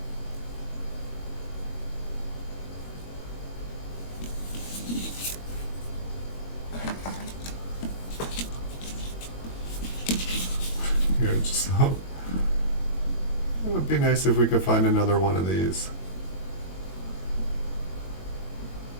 Here, just so it would be nice if we could find another one of these.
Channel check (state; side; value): late; right; 21 ms